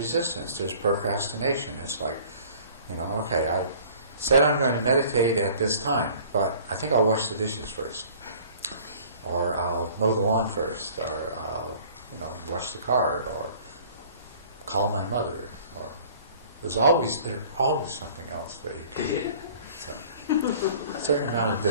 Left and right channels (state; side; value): inverted; both; correlation -0.50